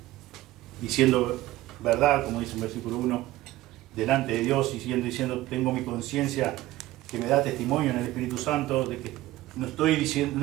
diciendo verdad, como dice en versículo 1, delante de Dios, y diciendo, tengo mi conciencia que me da testimonio en el Espíritu Santo de que no estoy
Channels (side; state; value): left; quieter; 16.6 dB